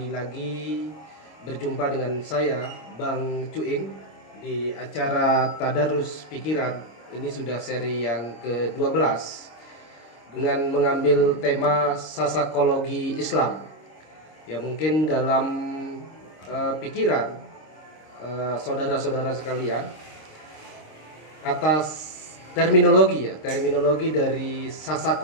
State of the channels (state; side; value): late; right; 26 ms